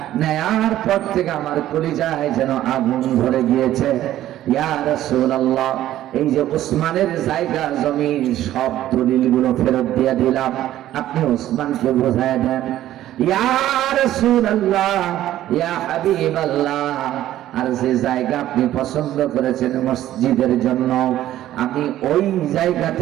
নেয়ার পর থেকে আমার কলিজায় যেন আগুন ধরে গিয়েছে। ইয়া রাসূলুল্লাহ, এই যে ওসমানের জায়গা জমি সব দলিলগুলো ফেরত দিয়ে দিলাম, আপনি ওসমানকে বোঝায় দেন। ইয়া রাসূলুল্লাহ, ইয়া হাবিবাল্লাহ, আর যে জায়গা আপনি পছন্দ করেছেন মসজিদের জন্য, আমি ওই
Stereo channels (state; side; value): quieter; left; 13.3 dB